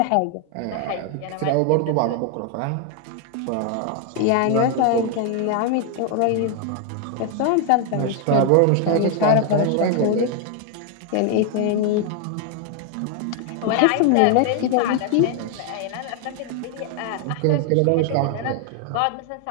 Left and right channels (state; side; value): different; both; correlation 0.00